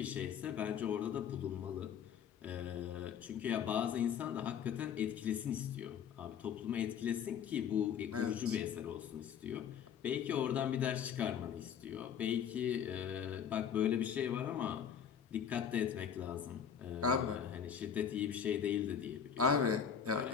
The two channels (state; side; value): quieter; right; 8.0 dB